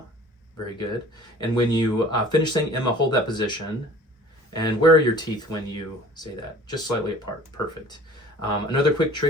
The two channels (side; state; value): both; normal; correlation 0.47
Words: Very good. And when you finish saying Emma, hold that position. And where are your teeth when you say that? Just slightly apart. Perfect. Another quick